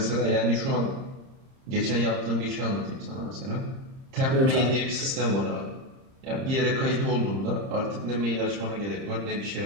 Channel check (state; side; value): late; left; 30 ms